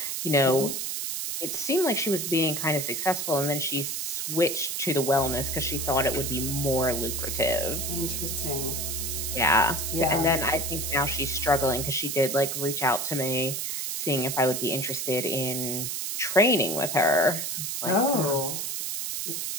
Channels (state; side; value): noise; right; hiss, 3 dB below the sound